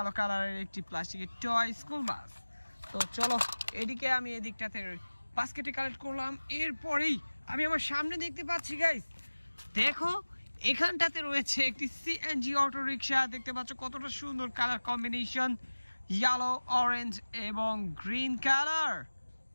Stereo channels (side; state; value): both; inverted; correlation -1.00